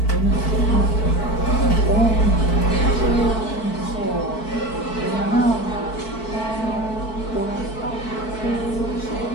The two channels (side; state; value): right; late; 4.5 ms